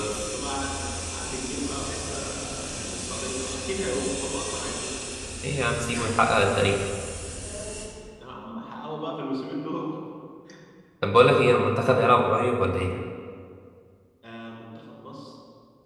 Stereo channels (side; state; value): both; identical; correlation 1.00